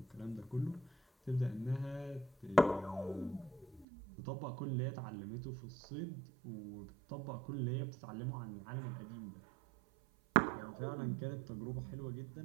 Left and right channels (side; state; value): left; drops out; at 3.9 s